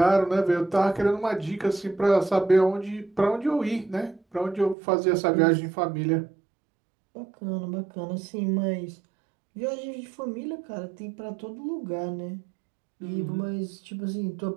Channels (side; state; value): left; drops out; at 4.8 s